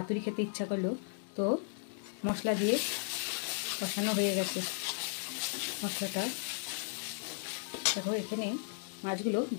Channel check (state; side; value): silent; right; digital silence